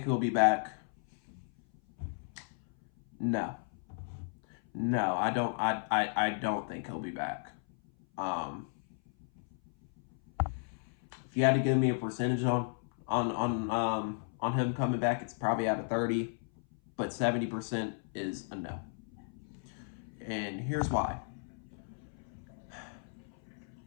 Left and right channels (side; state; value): right; silent; 55 dB below the other